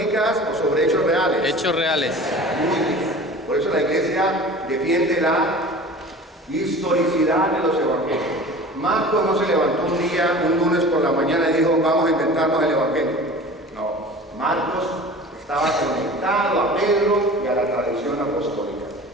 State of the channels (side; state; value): both; normal; correlation 0.40